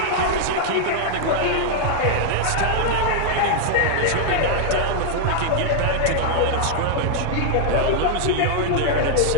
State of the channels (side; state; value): both; different; correlation -0.01